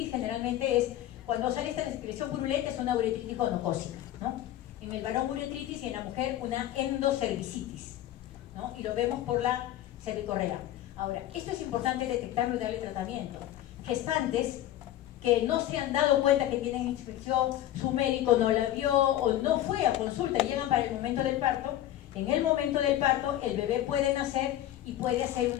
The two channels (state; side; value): quieter; right; 13.1 dB